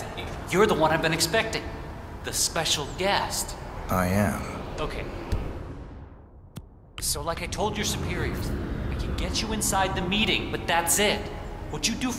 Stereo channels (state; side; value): identical; both; correlation 1.00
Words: You're the one I've been expecting. The special guest. I am. Okay. So like I told your superiors, I can get you inside the meeting, but that's it. What you do